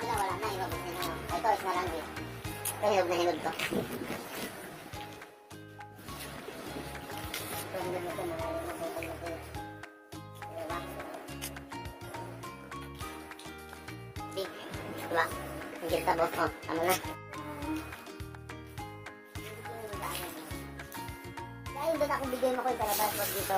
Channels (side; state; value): both; identical; correlation 1.00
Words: na wala na, ilabot na yun. Ito, is na lang din. Ito, hinog na hinog to. Ito, hinog na ito, mga hinog na ito. Diba? Big. Diba? Ang gilta boss ko. Ano na? Dahil doon ako bigay mo ko yung kalabas. Wag